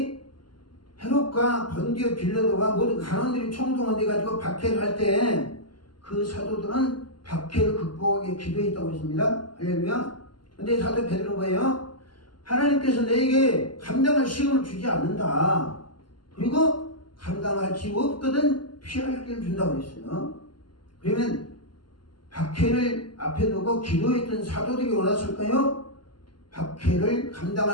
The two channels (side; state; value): right; late; 0.71 ms